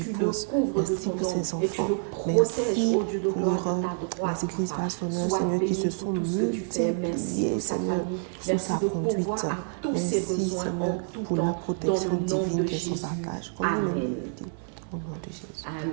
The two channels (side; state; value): left; silent; 60 dB below the other